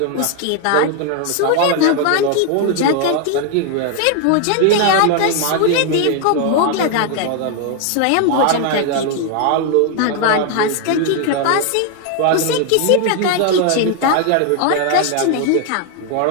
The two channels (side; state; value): both; different; correlation 0.00